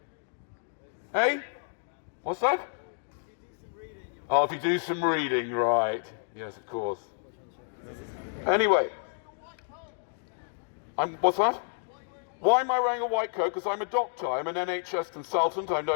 Hey? What's that? Oh, if you do some reading, right. Yes, of course. Anyway. What's that? Why am I wearing a white coat? Because I'm a doctor. I'm an NHS consultant. I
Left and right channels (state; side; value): silent; right; digital silence